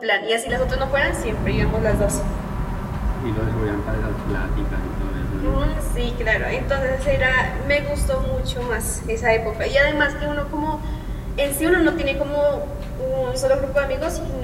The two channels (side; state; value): both; identical; correlation 1.00